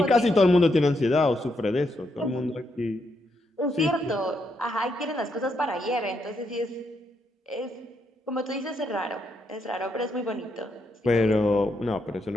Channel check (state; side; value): normal; both; correlation 0.79